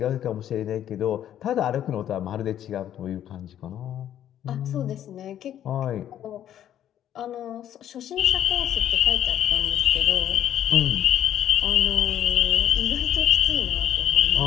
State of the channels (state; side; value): quieter; right; 10.9 dB